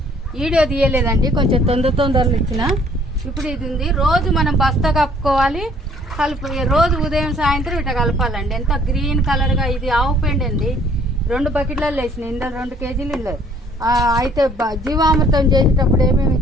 వీడియో తీయలేదండి. కొంచెం తొందరలో ఇచ్చిన. ఇప్పుడు ఇది ఉంది. రోజు మనం బస్తా కప్పుకోవాలి. రోజు ఉదయం సాయంత్రం ఇట్లా కలపాలండి. ఎంత గ్రీన్ కలర్గా. ఇది ఆవు పెండ అండి. 2 బకెట్లలో వేసినాయి. ఇందులో 2 కేజీలు ఇల్లు. అయితే జీవామృతం చేసేటప్పుడు ఏమేమి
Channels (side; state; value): both; normal; correlation 0.59